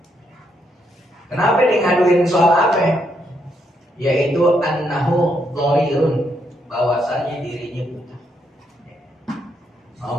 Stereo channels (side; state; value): both; normal; correlation 0.76